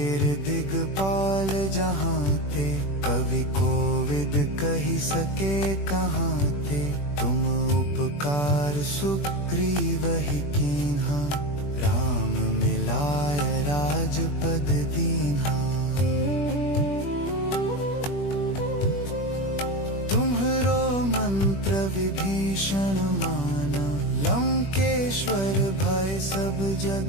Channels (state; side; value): late; right; 21 ms